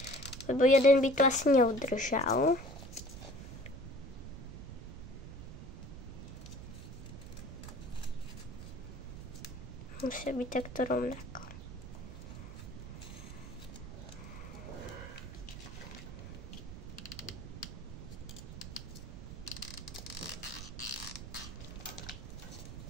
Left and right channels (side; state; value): right; noise; rumble, 11 dB below the sound